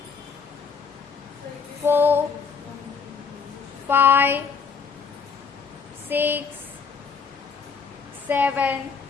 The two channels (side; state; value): right; quieter; 5.7 dB